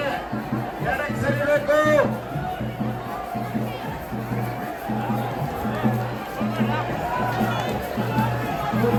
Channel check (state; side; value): identical; both; correlation 1.00